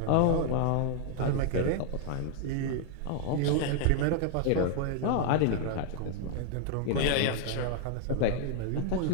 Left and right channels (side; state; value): both; different; correlation 0.00